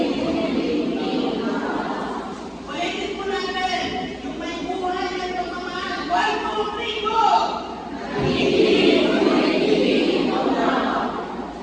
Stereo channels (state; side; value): identical; both; correlation 1.00